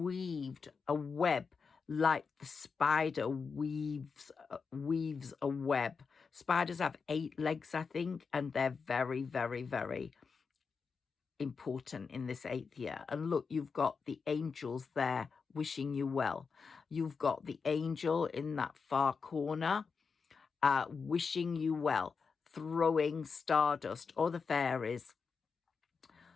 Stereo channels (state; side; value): quieter; right; 5.3 dB